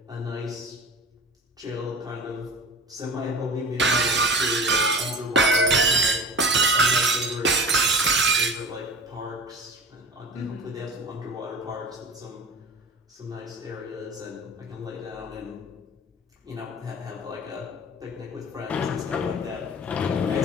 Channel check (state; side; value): normal; both; correlation 0.35